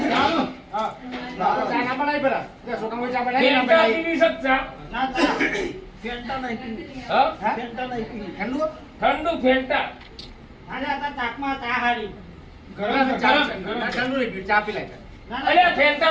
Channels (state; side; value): identical; both; correlation 1.00